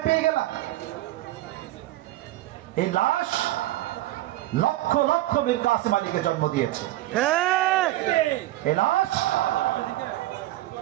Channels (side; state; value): left; quieter; 16.1 dB